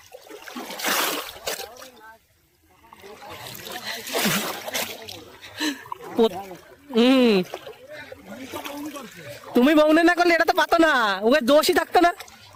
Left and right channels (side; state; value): both; identical; correlation 1.00